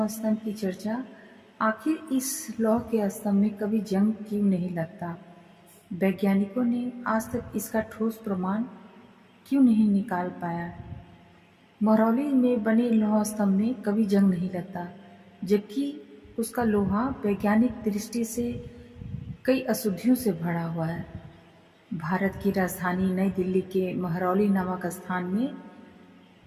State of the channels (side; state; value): both; identical; correlation 1.00